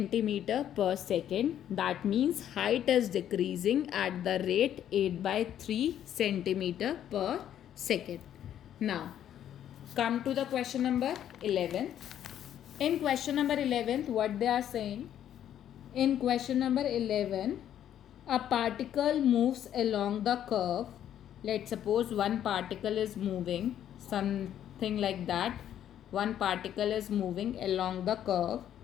per second. That means height is decreasing at the rate 8 by 3 centimeter per second. Now come to the question number 11. In question number 11, what they are saying? In question number 11, a particle moves along the curve. Let's suppose one particle is moving, some something like that. One particle is moving along the curve.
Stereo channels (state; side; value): quieter; right; 10.6 dB